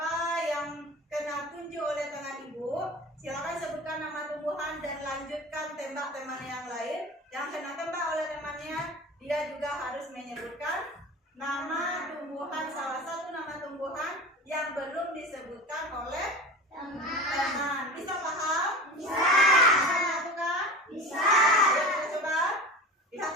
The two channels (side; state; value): both; normal; correlation 0.33